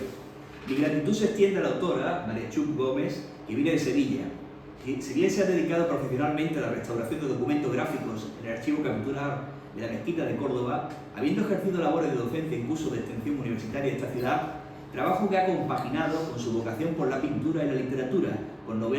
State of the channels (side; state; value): both; identical; correlation 1.00